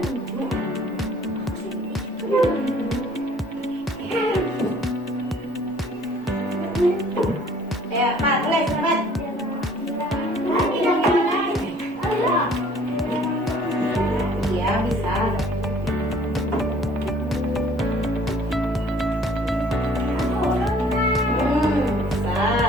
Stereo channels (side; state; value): both; normal; correlation 0.56